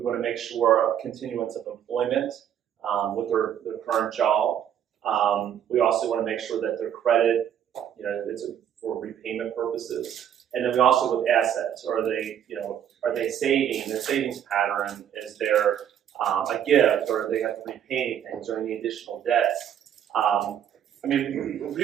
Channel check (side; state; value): left; quieter; 9.7 dB